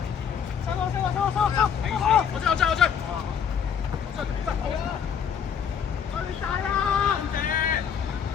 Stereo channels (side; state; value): right; quieter; 7.7 dB